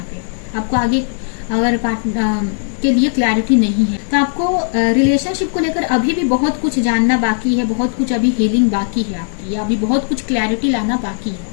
पे आपको आगे अगर पार्टनर के लिए क्लैरिटी नहीं है तो आपको रिलेशनशिप को लेकर अभी भी बहुत कुछ जानना बाकी है, बहुत कुछ अभी हीलिंग बाकी है आपकी, या अभी बहुत कुछ क्लैरिटी लाना बाकी है।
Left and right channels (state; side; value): silent; right; 68 dB below the other